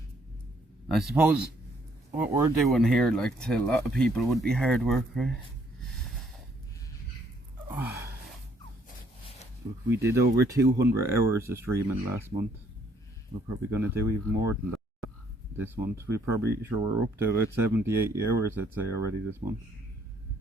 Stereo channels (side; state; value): both; normal; correlation 0.67